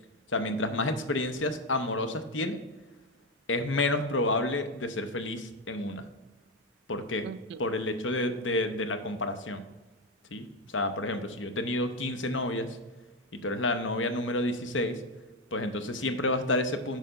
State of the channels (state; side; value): normal; both; correlation 0.11